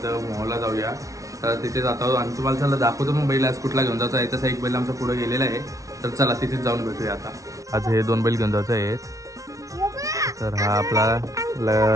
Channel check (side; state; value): left; late; 0.16 ms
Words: मोहला जाऊया. तर तिथे जातो आणि तुम्हाला चला दाखवतो मग बैल आज कुठला घेऊन जायचा आहे. तसा एक बैल आमचा पुढे गेलेला आहे, तर चला तिथेच जाऊन भेटूया. आता आज हे 2 बैल घेऊन जायचं आहेत. तर हा